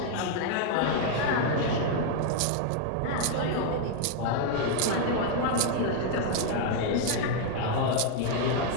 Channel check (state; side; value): different; both; correlation 0.00